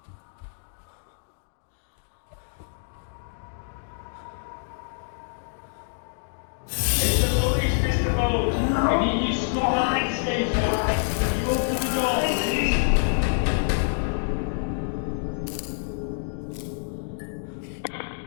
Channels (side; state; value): right; silent; digital silence